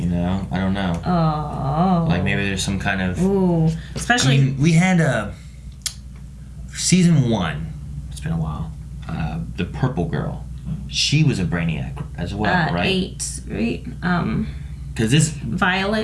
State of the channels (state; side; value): identical; both; correlation 1.00